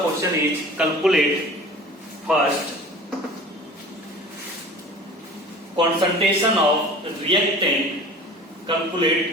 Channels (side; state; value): both; normal; correlation 0.41